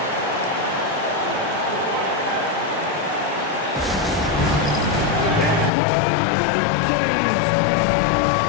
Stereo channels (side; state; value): right; drops out; at 5.7 s